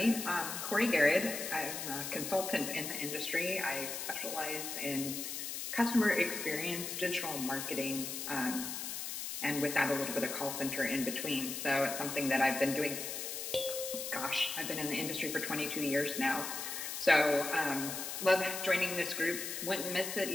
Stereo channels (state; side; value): noise; left; hiss, 5 dB below the sound